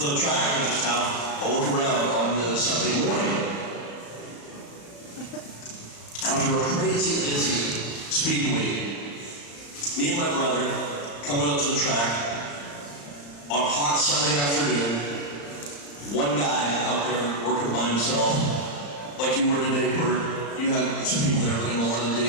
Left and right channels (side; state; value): right; late; 35 ms